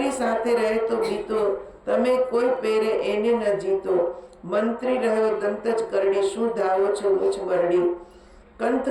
સાથે રહે તો બીતો, તમે કોઈ પેરે એને ન જીતો. મંત્રી રહ્યો દંત જ કરડી, શું ધાવો છો મુછ મરડી. કંત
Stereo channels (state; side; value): identical; both; correlation 1.00